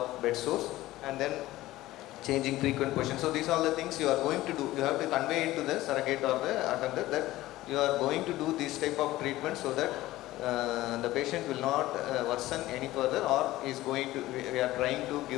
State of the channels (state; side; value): quieter; right; 16.6 dB